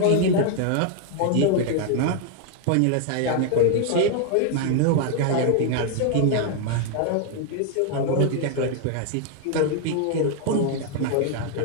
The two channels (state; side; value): different; both; correlation 0.00